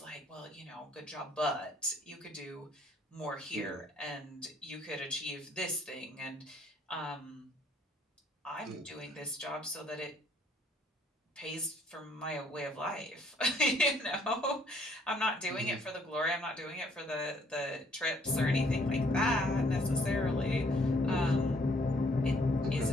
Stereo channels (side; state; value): both; normal; correlation 0.65